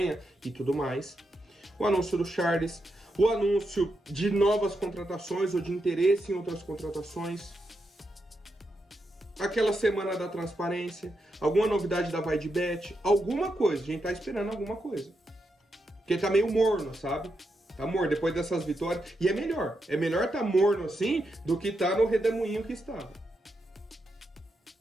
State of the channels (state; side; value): normal; both; correlation 0.84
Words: e tudo mais. O anúncio do Charles, o anúncio de novas contratações ou de interesse em outras contratações. aquela semana da transparência, alguma novidade da Vai de Bet, alguma coisa. A gente tá esperando alguma coisa. Porque tá meio morno, sabe? Tá morno depois dessas vitórias. E é melhor. É melhor tá morno assim do que tá no redemoinho que estava.